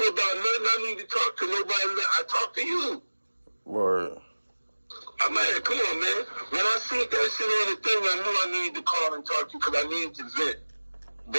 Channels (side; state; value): both; inverted; correlation -1.00